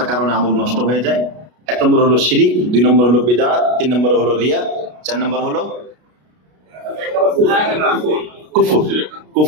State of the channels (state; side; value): late; left; 33 ms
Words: কারণে আমল নষ্ট হয়ে যায়। 1 নম্বর হলো শিরিক, 2 নম্বর হলো বিদআত, 3 নম্বর হলো রিয়া, 4 নম্বর হলো